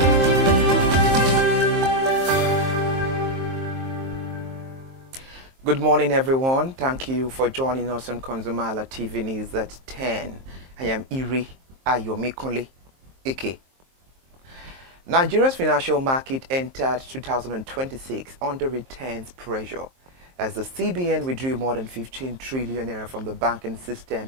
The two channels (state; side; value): late; left; 23 ms